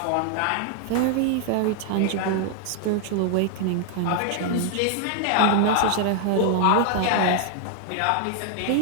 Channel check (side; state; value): both; different; correlation 0.00